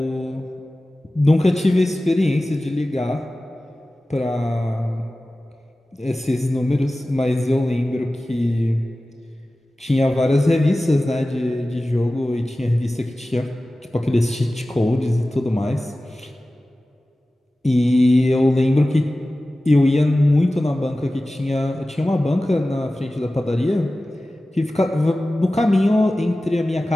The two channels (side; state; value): both; normal; correlation 0.96